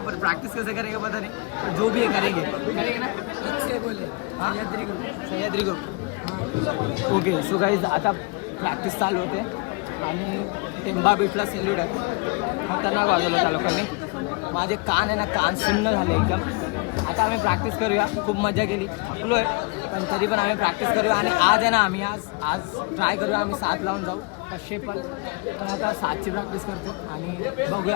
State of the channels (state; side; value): quieter; right; 28.0 dB